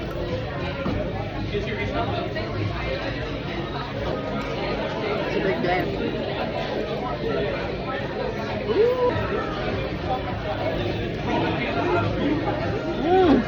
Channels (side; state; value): both; identical; correlation 1.00